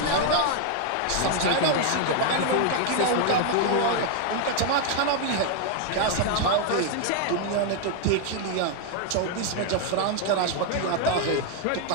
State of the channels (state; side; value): different; both; correlation 0.00